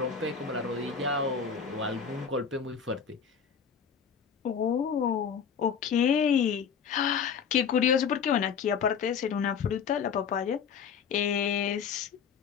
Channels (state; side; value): quieter; right; 6.8 dB